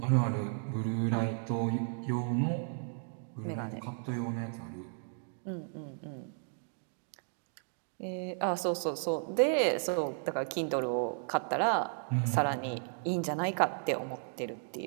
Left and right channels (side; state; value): left; silent; 55 dB below the other